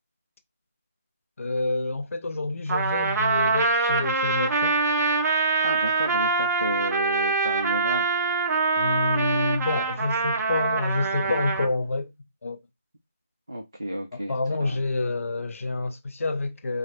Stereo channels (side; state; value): both; inverted; correlation -0.54